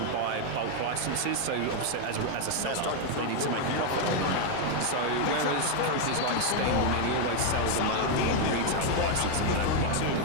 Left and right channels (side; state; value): both; different; correlation 0.01